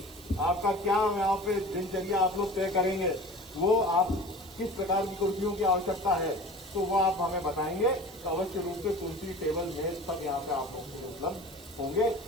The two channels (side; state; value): right; noise; hiss, 20 dB below the sound